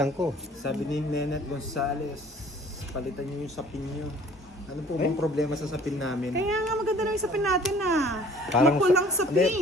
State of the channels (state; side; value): normal; both; correlation 0.53